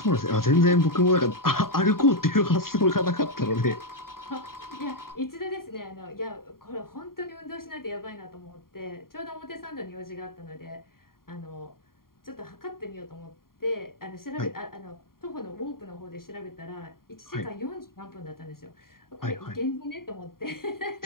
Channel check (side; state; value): right; late; 0.92 ms